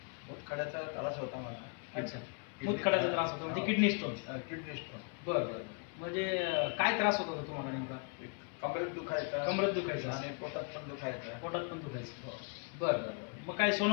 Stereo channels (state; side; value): quieter; right; 37.8 dB